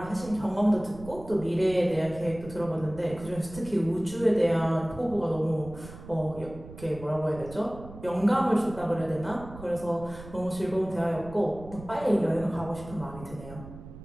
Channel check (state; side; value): noise; right; rumble, 15 dB below the sound